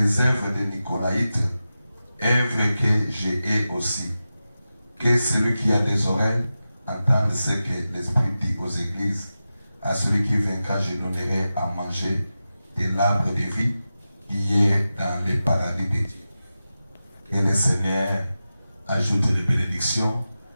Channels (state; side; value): inverted; both; correlation -0.93